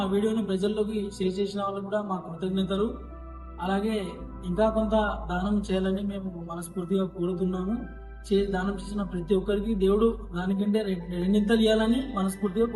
వీడియోని ప్రజల్లోకి షేర్ చేసిన వాళ్ళకి కూడా మా కృతజ్ఞతలు. అలాగే ఇంకా కొంత దానం చేయాలని మేము మనస్ఫూర్తిగా కోరుతున్నాము. దానం చేసిన ప్రతి ఒక్కరికి దేవుడు దానికంటే రెండింతలు ఇవ్వాలని మనస్ఫూర్తిగా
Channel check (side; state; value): both; identical; correlation 1.00